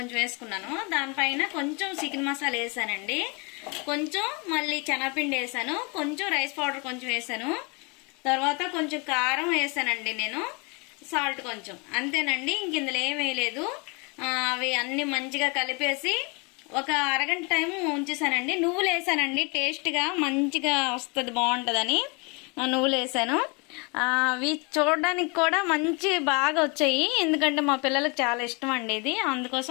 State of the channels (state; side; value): quieter; right; 31.0 dB